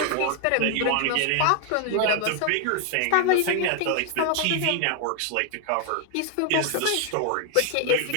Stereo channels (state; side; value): different; both; correlation 0.00